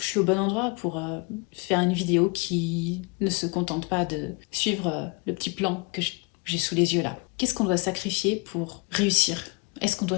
suis au bon endroit pour faire une vidéo qui ne se contente pas de suivre le petit plan que j'ai sous les yeux là. Qu'est-ce qu'on doit sacrifier pour réussir Est-ce qu'on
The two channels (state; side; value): quieter; right; 29.0 dB